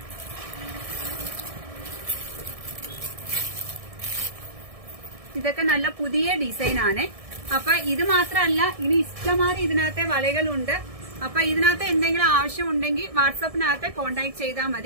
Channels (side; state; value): left; late; 1.6 ms